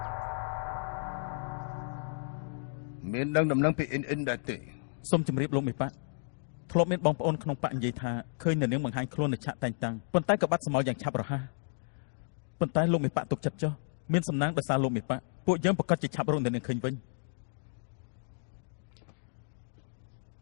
មានដឹងដំណឹងពីអ៊ិនដែរទេសូមជម្រាបលោកមេប៉ាធ្លាប់មានបងប្អូនក្នុងប៉ានិយាយថាឃើញនៅនាងបង្ហាញខ្លួននៅឆាកតែងតាំងប៉ុន្តែក៏បាត់សមោលយ៉ាងឆាប់រហ័សប៉ុន្តែលោកមេប៉ាទុកចិត្តចុះមានសំណាងដោយសារលោកមេប៉ាពួកយើងប្រកាសជាឆាប់រកនៅនាងឃើញវិញ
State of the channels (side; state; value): right; silent; digital silence